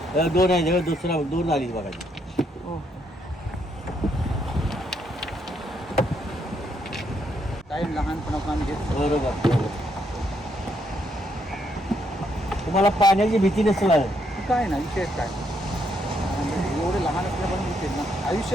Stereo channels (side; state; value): both; normal; correlation 0.75